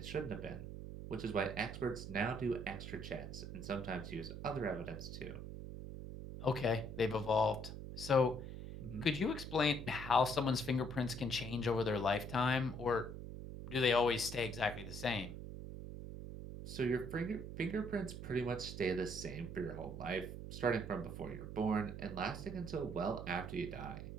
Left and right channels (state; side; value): noise; right; hum, 8 dB below the sound